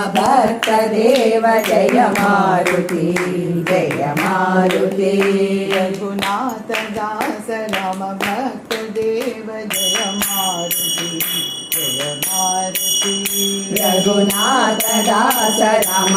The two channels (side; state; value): both; identical; correlation 1.00